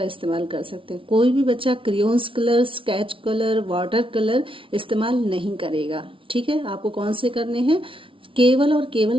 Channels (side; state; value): left; late; 0.25 ms